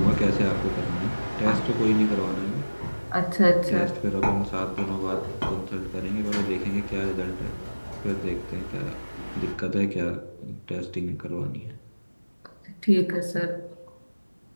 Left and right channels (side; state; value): both; inverted; correlation -1.00